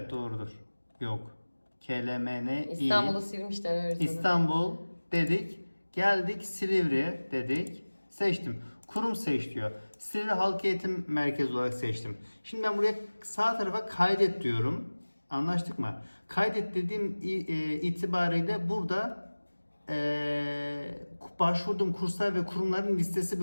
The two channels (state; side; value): inverted; both; correlation -1.00